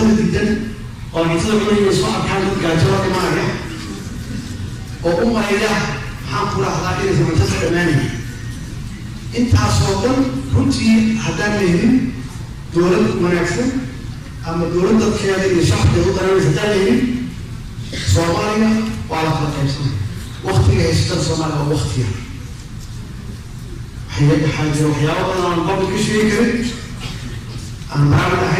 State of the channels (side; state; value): both; identical; correlation 1.00